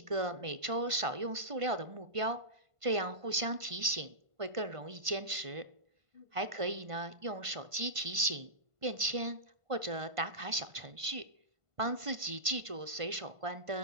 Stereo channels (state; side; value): late; left; 1.5 ms